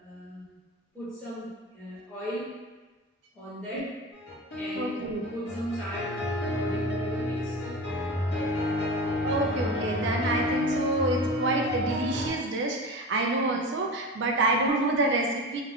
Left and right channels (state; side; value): normal; both; correlation 0.28